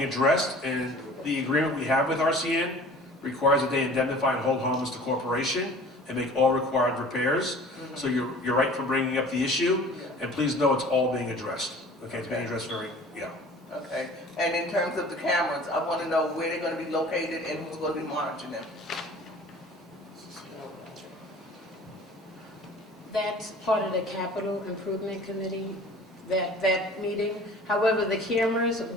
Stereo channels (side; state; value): both; normal; correlation 0.45